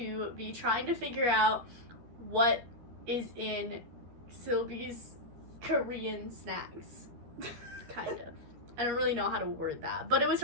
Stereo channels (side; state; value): left; late; 13 ms